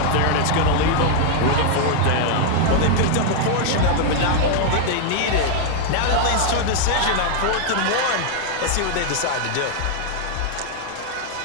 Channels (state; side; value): different; both; correlation 0.00